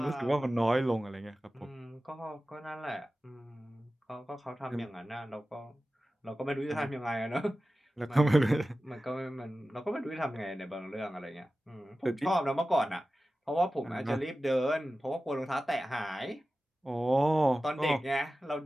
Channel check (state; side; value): normal; both; correlation 0.95